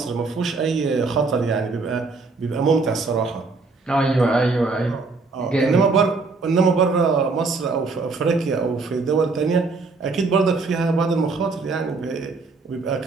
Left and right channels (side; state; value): left; quieter; 4.0 dB